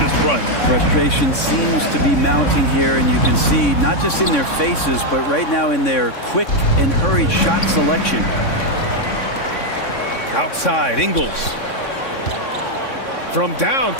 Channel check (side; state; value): right; late; 3.6 ms